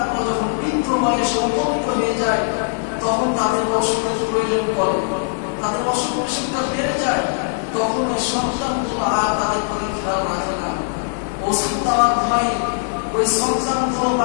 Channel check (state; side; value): silent; right; digital silence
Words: যখন বৃদ্ধ বয়সে উপনীত হয়ে যায়, তখন তাদের অসুখের প্রয়োজন পড়ে, তাদের অসুখ বিসুখটা বেড়ে যায়, তখন ওই সন্তানগুলো আর তাদের প্রতি খেয়াল রাখে না। ওষুধ দেওয়ার ভয়ে ওই সন্তানগুলো